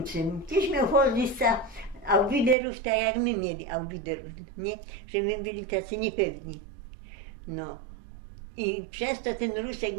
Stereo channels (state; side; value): drops out; left; at 2.6 s